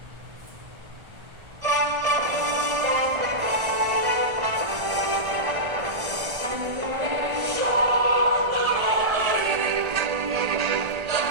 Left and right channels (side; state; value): left; late; 1.3 ms